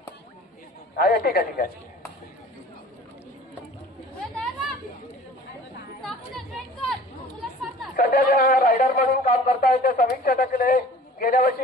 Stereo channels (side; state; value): both; normal; correlation 0.47